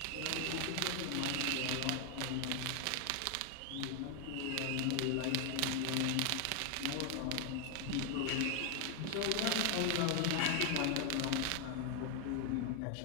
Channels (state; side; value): different; both; correlation 0.01